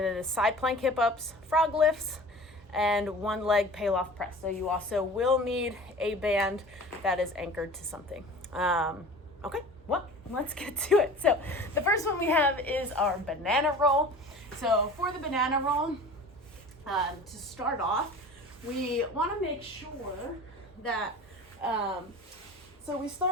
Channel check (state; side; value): normal; both; correlation 0.40